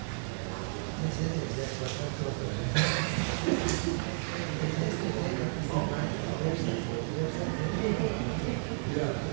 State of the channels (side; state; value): left; silent; digital silence